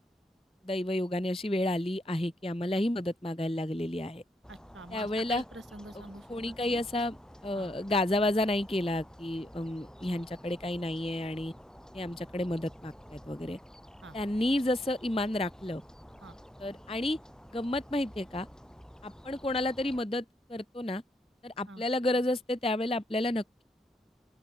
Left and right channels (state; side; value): normal; both; correlation 0.76